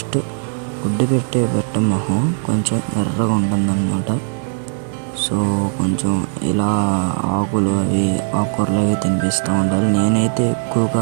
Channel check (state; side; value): silent; left; digital silence